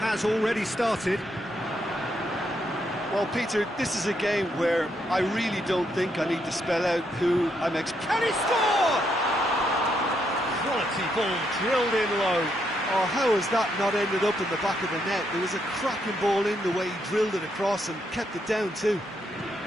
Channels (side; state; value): both; normal; correlation 0.77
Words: already started. Well, Peter, this is a game where I really don't think I need to spell out who I'm Can he score? Quality ball drilled in low. Oh, how has that not ended up in the back of the net? There was a cracking ball in the way he drilled it across and kept it down too.